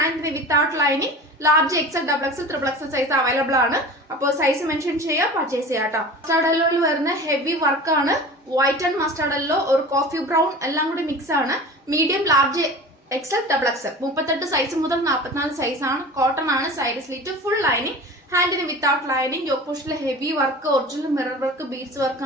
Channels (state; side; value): normal; both; correlation 0.37